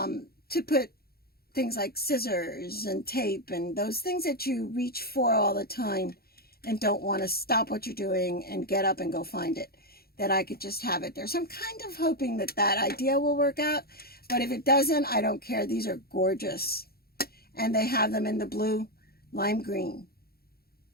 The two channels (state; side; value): late; right; 0.45 ms